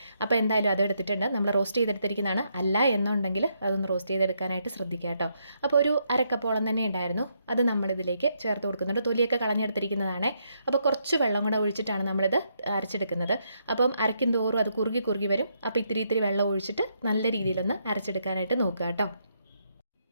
അപ്പോൾ എന്തായാലും അത് എടുത്തിട്ടുണ്ട്. നമ്മൾ റോസ്റ്റ് ചെയ്തെടുത്തിരിക്കുന്നതാണ്. അല്ല എന്നുണ്ടെങ്കിൽ അതൊന്ന് റോസ്റ്റ് ചെയ്തെടുക്കാനായിട്ട് ശ്രദ്ധിക്കുക കേട്ടോ. അപ്പോൾ ഒരു അരക്കപ്പോളം തന്നെ ഉണ്ടായിരുന്നു, അത് നമ്മളിതിലേക്ക് ചേർത്ത് കൊടുക്കുന്നുണ്ട്. തൊലിയൊക്കെ കളഞ്ഞെടുത്തിരിക്കുന്നതാണ്. അപ്പോൾ കുറച്ച് വെള്ളം കൂടെ ഒഴിച്ചിട്ടാണ് നമ്മളിത് അരച്ചെടുക്കുന്നത്. അപ്പം അരയ്ക്കും തോറും അത് കുറുകി വരും. അപ്പോൾ ഇത്തിരി വെള്ളം ഒഴിച്ചിട്ട് നല്ല രീതിയിലൊന്ന് അരച്ചെടുക്കാനായിട്ട് നോക്കുക കേട്ടോ.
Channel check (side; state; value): both; inverted; correlation -0.77